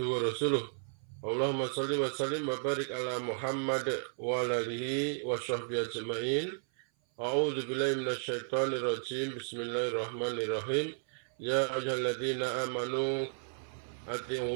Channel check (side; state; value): left; silent; 55 dB below the other